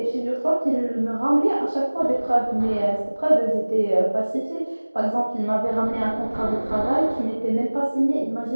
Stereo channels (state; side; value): inverted; both; correlation -1.00